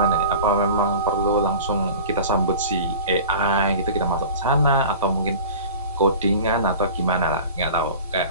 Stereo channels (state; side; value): inverted; both; correlation -0.38